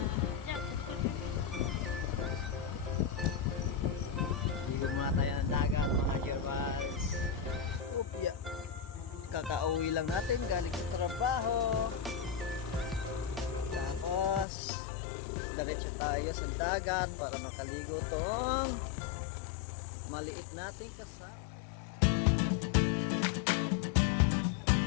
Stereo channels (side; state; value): right; drops out; at 14.5 s